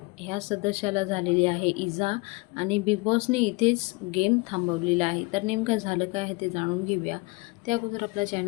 ह्या सदस्याला झालेली आहे इजा आणि बिग बॉसने इथेच गेम थांबवलेला आहे. तर नेमकं झालं काय आहे ते जाणून घेऊया. त्या अगोदर आपला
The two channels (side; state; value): right; quieter; 25.9 dB